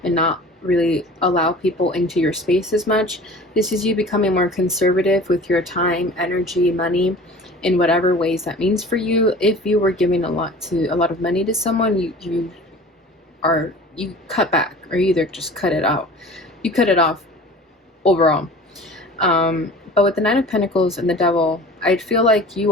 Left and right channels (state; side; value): normal; both; correlation 0.42